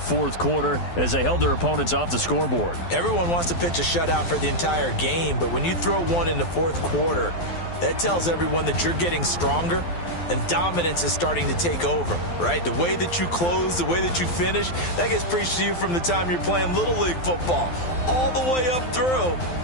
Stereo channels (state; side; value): late; right; 12 ms